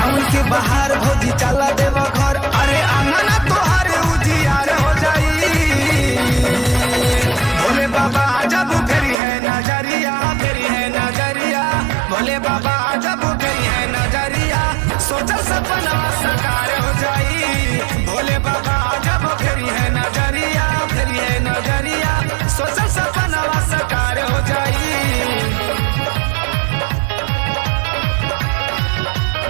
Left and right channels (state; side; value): drops out; left; at 9.2 s